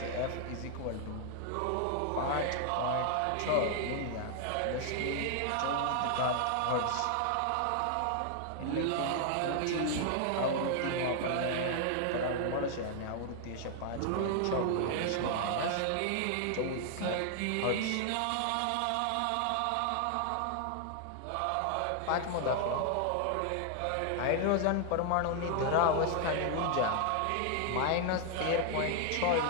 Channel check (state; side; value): different; both; correlation 0.00